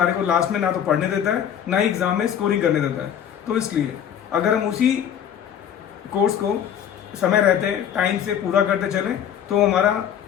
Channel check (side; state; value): right; quieter; 9.2 dB